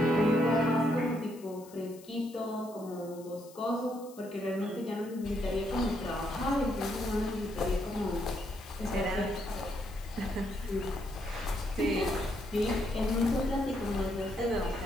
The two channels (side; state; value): left; noise; hiss, 22 dB below the sound